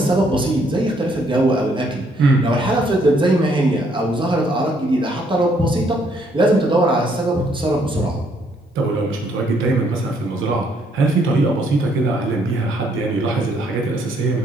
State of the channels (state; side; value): normal; both; correlation 0.69